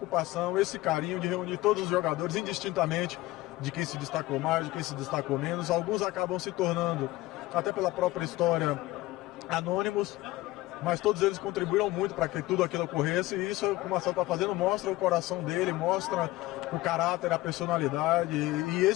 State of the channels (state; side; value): quieter; right; 18.2 dB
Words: esse carinho de reunir todos os jogadores indistintamente de quem se destacou mais, de quem se destacou menos. Alguns acabam se tornando, até pela própria história, anônimos, mas todos eles contribuíram muito para que tudo aquilo ocorresse, e isso que o Marcelo está fazendo mostra o coração dele, mostra o caráter, a personalidade e